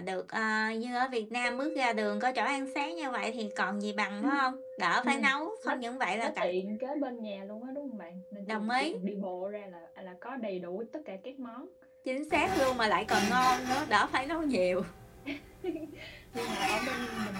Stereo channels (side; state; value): both; identical; correlation 1.00